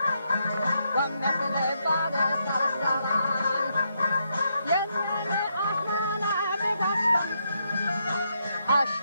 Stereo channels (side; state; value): both; inverted; correlation -0.79